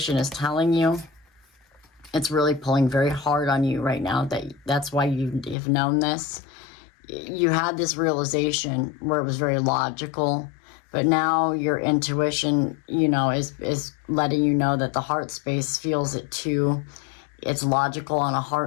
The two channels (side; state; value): right; drops out; at 5.6 s